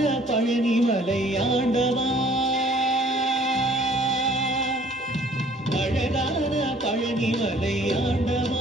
பழனி மலை ஆண்டவா, அழகான பழனி மலை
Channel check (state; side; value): normal; both; correlation 0.56